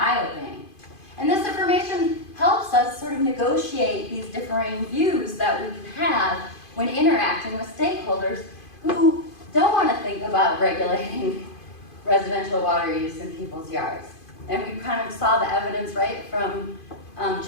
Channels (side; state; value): right; late; 2.5 ms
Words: And this information helps us sort of negotiate these differing views that we can have when interacting with stakeholders who don't want to think about regulating residential water use in people's yards. And we kind of saw the evidence, right, from